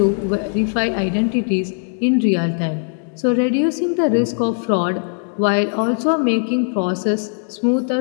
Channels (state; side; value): silent; right; 57 dB below the other